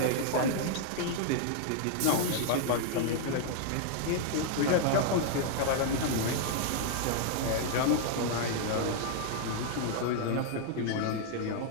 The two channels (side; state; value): both; different; correlation 0.00